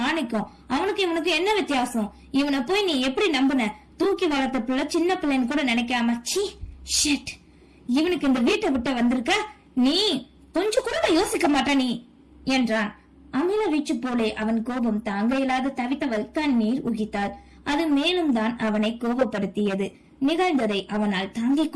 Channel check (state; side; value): identical; both; correlation 1.00